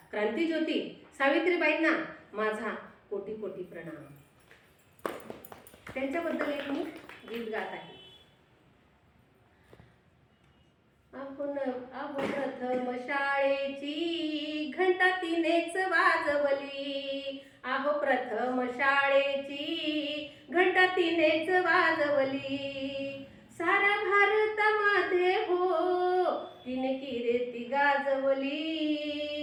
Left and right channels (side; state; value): both; identical; correlation 1.00